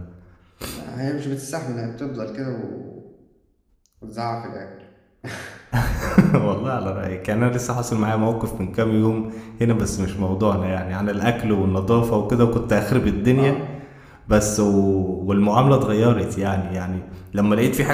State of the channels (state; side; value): identical; both; correlation 1.00